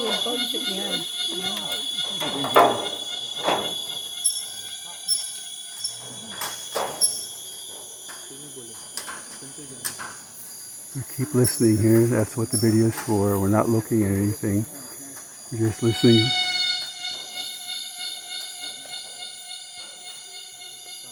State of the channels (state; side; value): identical; both; correlation 1.00